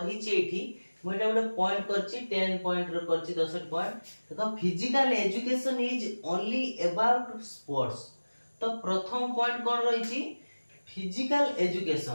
छि एठी मु एटा गोटे पॉइंट करछि 10 पॉइंट रो करछि 10 पॉइंट। देखो physical education is only about sports. तो प्रथम पॉइंट कोन रही छि फिजिकल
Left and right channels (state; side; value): inverted; both; correlation -1.00